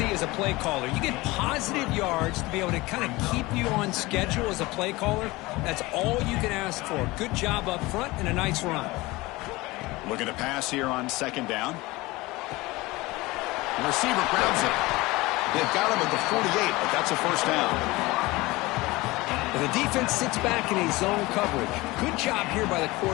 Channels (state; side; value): quieter; right; 21.2 dB